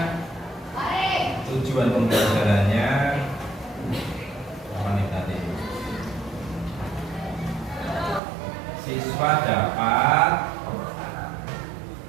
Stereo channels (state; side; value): drops out; left; at 8.2 s